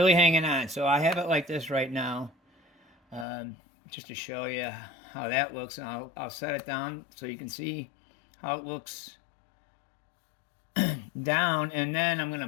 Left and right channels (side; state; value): right; drops out; at 3.2 s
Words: hanging on. So I have it like this right now, just to show you how that looks. And I'll set it down so you can see how it looks down, and then I'm going